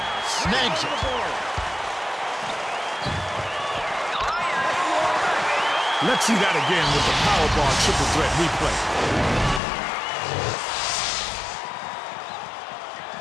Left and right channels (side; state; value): right; drops out; at 9.6 s